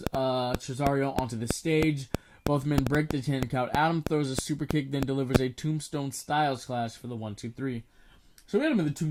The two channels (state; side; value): identical; both; correlation 1.00